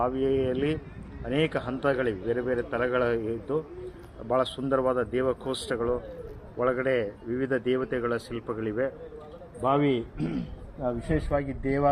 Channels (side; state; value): both; identical; correlation 1.00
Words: ಅನೇಕ ಹಂತಗಳಿವೆ, ಬೇರೆ ಬೇರೆ ತಲಗಳಿದ್ದು ಭಾಳ ಸುಂದರವಾದ ದೇವಕೋಷ್ಠಗಳು, ಒಳಗಡೆ ವಿವಿಧ ದೇವತೆಗಳ ಶಿಲ್ಪಗಳಿವೆ. ಬಾವಿ ವಿಶೇಷವಾಗಿ